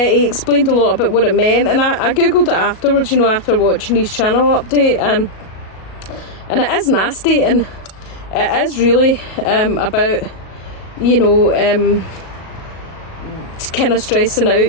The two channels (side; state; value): right; late; 37 ms